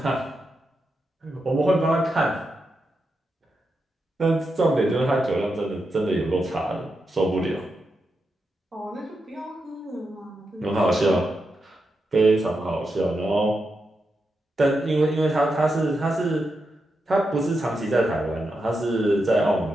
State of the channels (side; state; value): both; normal; correlation 0.86